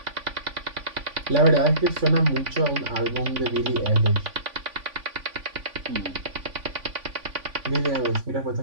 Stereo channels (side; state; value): left; late; 3.5 ms